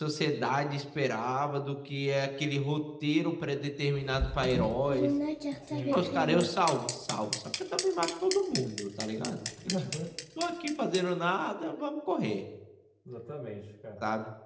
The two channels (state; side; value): identical; both; correlation 1.00